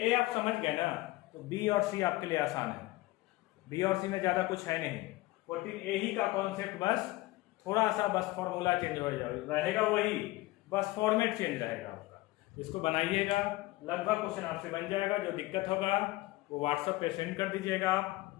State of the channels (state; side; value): quieter; right; 19.3 dB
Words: आप समझ गए ना तो B और C आपके लिए आसान है। B और C में ज्यादा कुछ है नहीं, 14A ही का कॉन्सेप्ट, बस थोड़ा सा बस फॉर्मूला चेंज हो रहेगा, वही बस फॉर्मेट चेंज रहेगा आपका। इसको बनाइएगा, लगभग क्वेश्चन आपसे बन जाएगा। जो दिक्कत होगा वो व्हाट्सएप पे सेंड कर दीजिएगा आप,